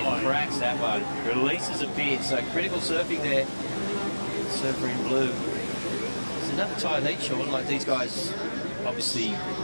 cracks that one. Releases a bit, so critical surfing there. Surfer in blue. It's another tight heat, Sean. Like these guys, obviously,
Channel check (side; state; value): both; inverted; correlation -1.00